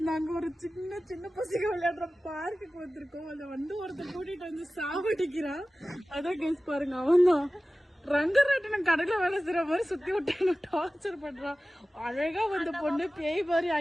நாங்க ஒரு சின்ன சின்ன பசங்க விளையாடுற பார்க்குக்கு வந்திருக்கோம். அதை வந்து ஒருத்தர் கூட்டிட்டு வந்து சாவடிக்கிறான். அதான் கைஸ் பாருங்க, அவன் தான் ரங்கராட்டினம் கடையில வேலை செய்யற மாதிரி சுத்தி விட்டு டார்ச்சர் பண்றான். அழகா வந்த பொண்ணு பேய் மாதிரி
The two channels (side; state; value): both; normal; correlation 0.96